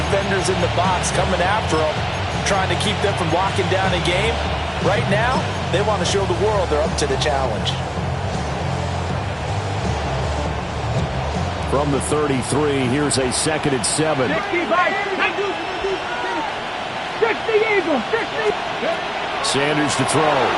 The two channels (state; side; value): identical; both; correlation 1.00